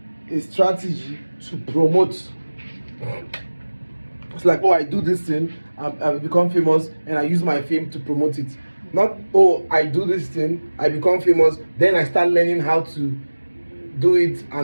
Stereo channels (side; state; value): both; inverted; correlation -1.00